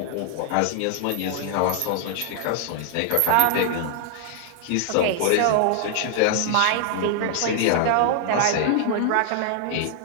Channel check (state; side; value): different; both; correlation 0.00